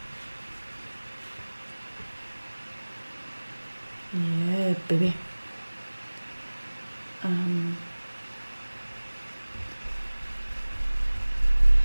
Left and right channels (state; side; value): inverted; both; correlation -1.00